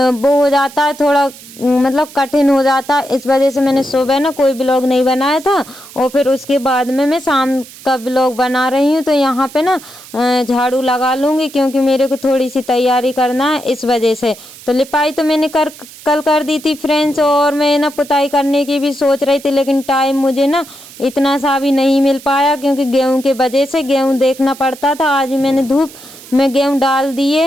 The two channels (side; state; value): right; noise; hiss, 19 dB below the sound